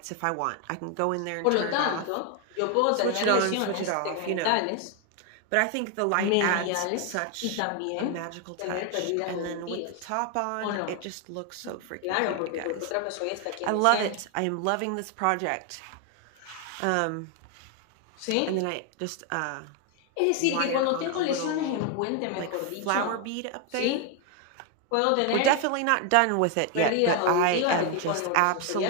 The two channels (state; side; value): different; both; correlation 0.01